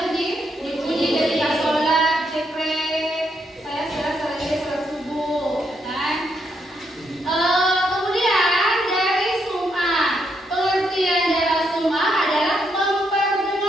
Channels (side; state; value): both; normal; correlation 0.78